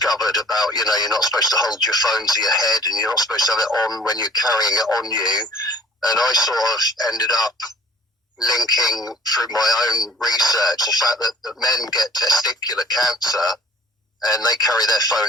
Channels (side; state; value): both; normal; correlation 0.53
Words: about, you're not supposed to hold your phone to your head and you're not supposed to have it on when you're carrying it on you. And I sort of ended up linking through my own research the fact that men get testicular cancer and they carry their